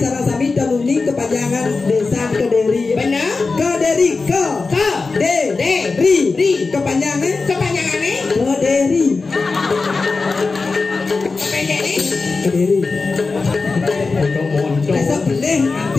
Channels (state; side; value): quieter; right; 4.1 dB